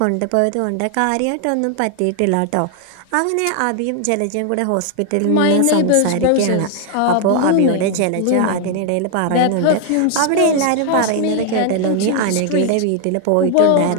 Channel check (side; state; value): both; different; correlation 0.00